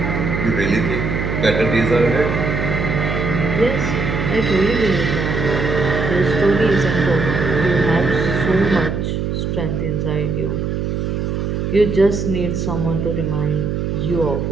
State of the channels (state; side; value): noise; right; hum, 1 dB below the sound